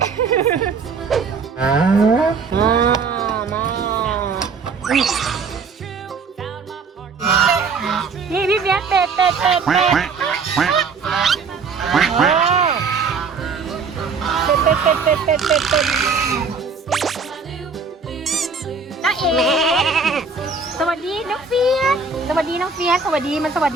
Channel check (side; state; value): left; quieter; 5.0 dB